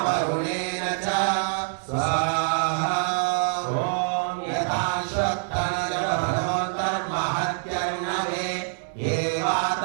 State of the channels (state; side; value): silent; left; digital silence